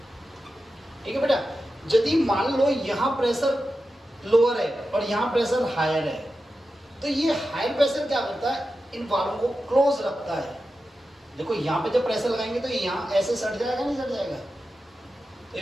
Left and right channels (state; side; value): normal; both; correlation 0.91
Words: ठीक है बेटा, यदि मान लो यहाँ प्रेशर लोअर है और यहाँ प्रेशर हायर है, तो ये हायर प्रेशर क्या करता है? इन वाल्वों को क्लोज रखता है। देखो यहाँ पे जब प्रेशर लगाएंगे तो यहाँ ऐसे सट जाएगा, नहीं सट जाएगा? तो